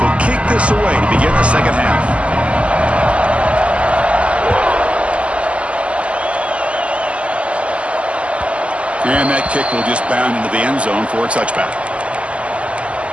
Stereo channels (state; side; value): late; left; 0.059 ms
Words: kick this away to begin the 2nd half. And that kick will just bound into the end zone for a touchback.